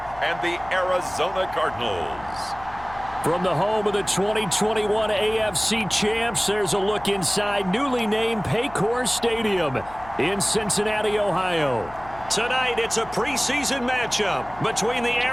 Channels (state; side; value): noise; left; hum, 19 dB below the sound